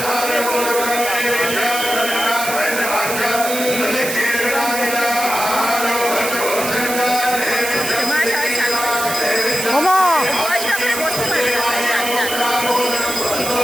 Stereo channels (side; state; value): right; noise; hiss, 5 dB below the sound